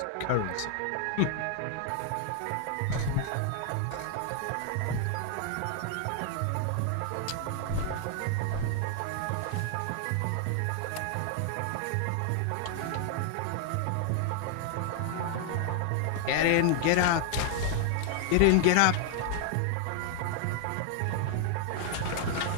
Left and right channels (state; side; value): different; both; correlation 0.00